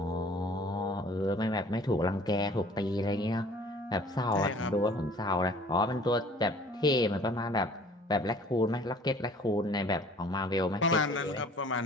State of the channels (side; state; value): both; normal; correlation 0.51